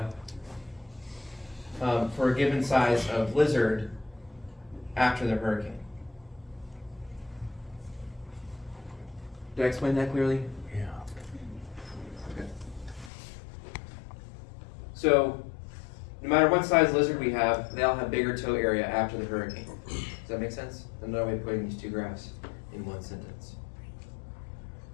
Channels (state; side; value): drops out; right; at 13.1 s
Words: for a given size of lizard after the hurricane. Did I explain that clearly? Yeah. Okay. So, no matter what size lizard we have, they all have bigger toe area after the hurricane. Does that make sense? Another way of putting these two graphs in one sentence.